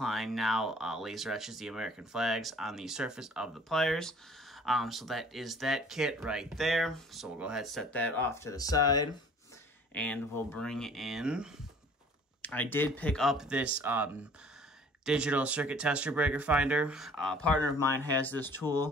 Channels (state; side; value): normal; both; correlation 0.51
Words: now laser etches the American flags on the surface of the pliers. So that is that kit right there. So we'll go ahead and set that off to the side. And we'll bring in, I did pick up this digital circuit tester breaker finder. A partner of mine has this